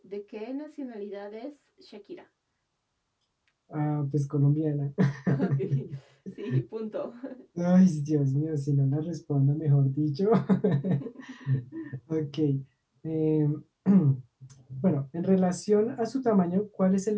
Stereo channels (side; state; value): both; identical; correlation 1.00